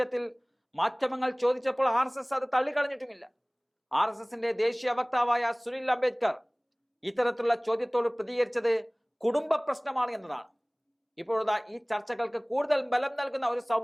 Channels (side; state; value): both; identical; correlation 1.00